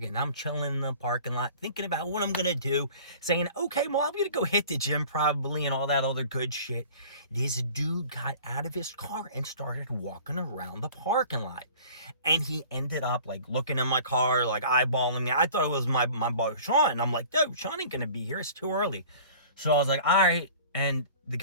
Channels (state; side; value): inverted; both; correlation -0.45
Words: and I'm chilling in the parking lot, thinking about what I'm going to do, saying, okay, well, I'm going to go hit the gym probably and all that other good shit. This dude got out of his car and started walking around the parking lot. And he ended up like looking in my car, like eyeballing me. I thought it was my boy, Sean. I'm like, dude, Sean ain't going to be here. It's too early. So I was like, all right. And the